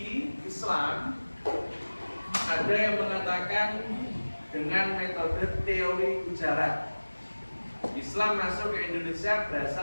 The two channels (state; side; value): inverted; both; correlation -1.00